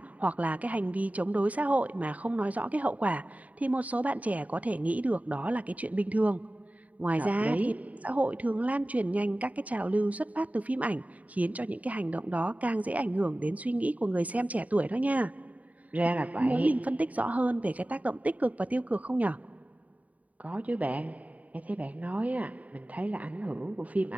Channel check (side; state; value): left; late; 0.071 ms